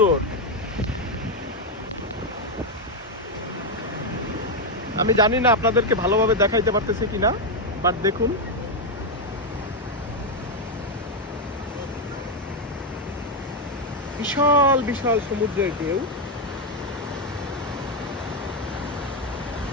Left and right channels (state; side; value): normal; both; correlation 0.03